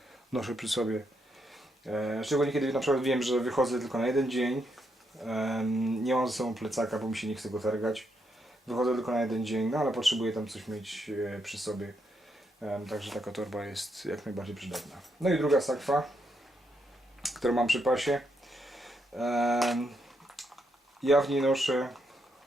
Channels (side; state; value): both; normal; correlation 0.79